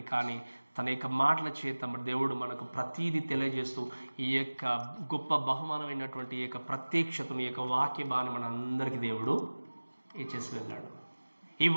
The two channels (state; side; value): inverted; both; correlation -1.00